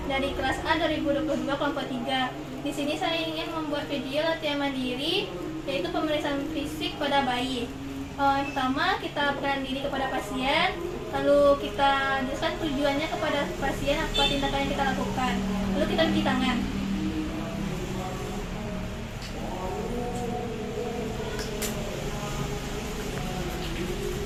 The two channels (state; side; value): identical; both; correlation 1.00